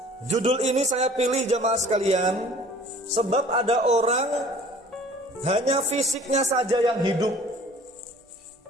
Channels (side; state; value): both; normal; correlation 0.50